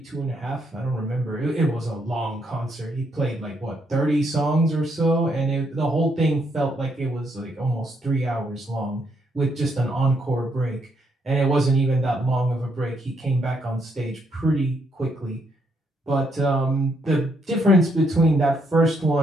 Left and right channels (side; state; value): both; normal; correlation 0.75